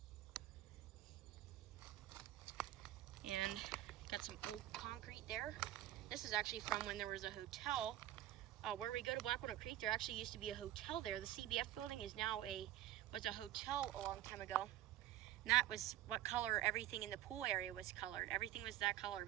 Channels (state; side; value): quieter; left; 13.7 dB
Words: And got some old concrete there. This is actually from when there was a hotel. Where we go to Black Walnut Creek, there actually used to be a hotel there. The CBF building is now was a hotel a long time ago. And that was what color everything in the pool area was colored. Everything was that color,